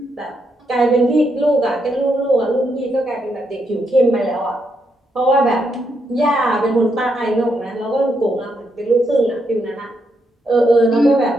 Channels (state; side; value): normal; both; correlation 0.79